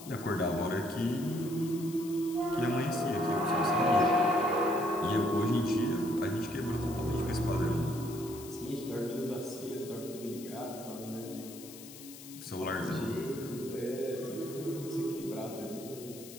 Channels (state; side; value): noise; left; hiss, 16 dB below the sound